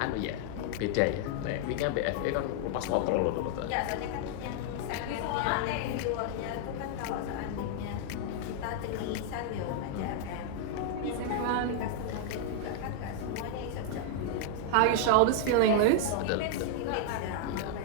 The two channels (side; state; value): both; different; correlation 0.00